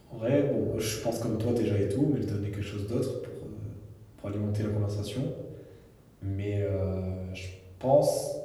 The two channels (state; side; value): identical; both; correlation 1.00